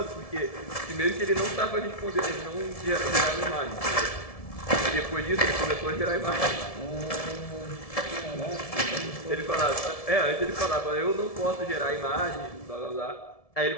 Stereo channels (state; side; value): late; right; 1.7 ms